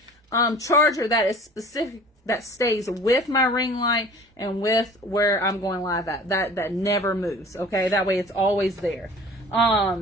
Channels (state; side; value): normal; both; correlation 0.45